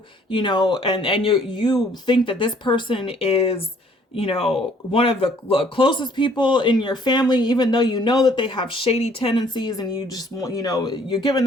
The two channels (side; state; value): both; normal; correlation 0.60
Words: you know, and you think that this person is, you know, one of the closest people in your family, even though you know that they have shady tendencies, and you just want, you know, you're giving